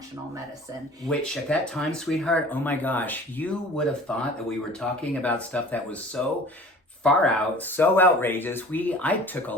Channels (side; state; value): both; normal; correlation 0.45